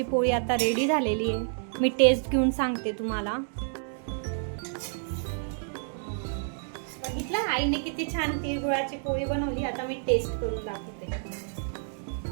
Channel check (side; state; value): left; silent; 59 dB below the other